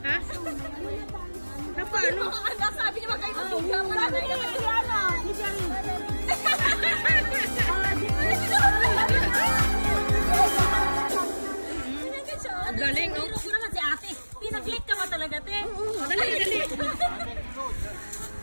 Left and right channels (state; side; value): inverted; both; correlation -1.00